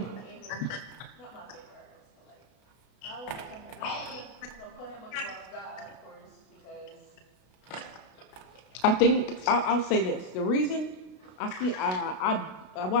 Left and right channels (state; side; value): late; right; 32 ms